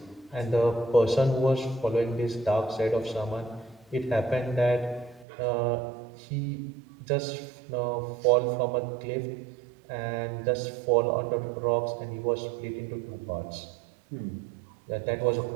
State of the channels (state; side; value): drops out; left; at 5.2 s